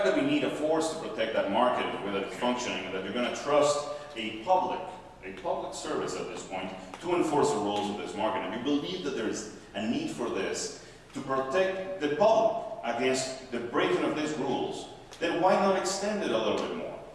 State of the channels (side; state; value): both; identical; correlation 1.00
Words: that we need a force to protect that market, whether it's functioning, and that you're going to trust a public service at this point to enforce the rules of this market, and you believe that there is a need for this to protect the public against the breaking of these rules, then why not extend it a little bit more?